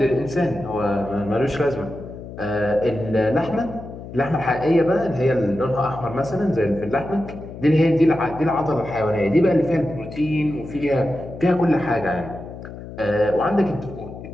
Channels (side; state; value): left; noise; hum, 12 dB below the sound